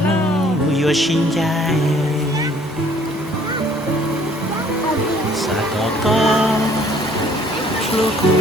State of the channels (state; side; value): normal; both; correlation 0.58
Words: nuôi yuan sinh dài sa có lúc cu